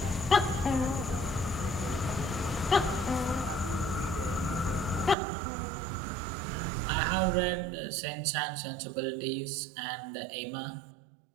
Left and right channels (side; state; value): left; drops out; at 5.2 s